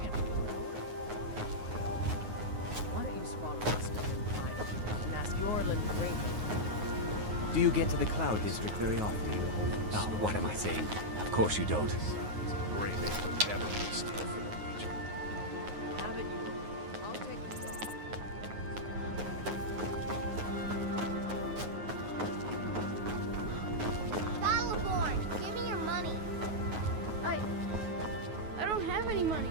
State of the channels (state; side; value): late; left; 9.5 ms